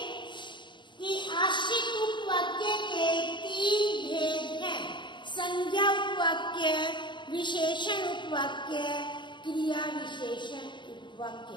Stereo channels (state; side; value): late; right; 0.23 ms